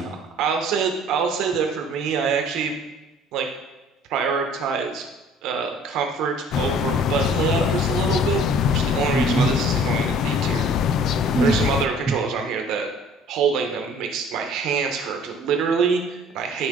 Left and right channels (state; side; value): normal; both; correlation 0.51